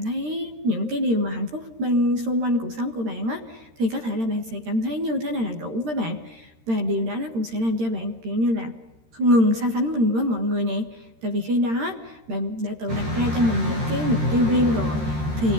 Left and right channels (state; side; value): late; left; 13 ms